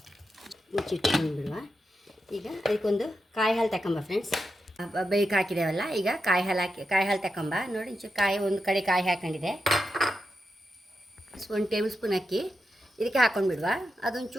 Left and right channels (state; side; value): normal; both; correlation 0.87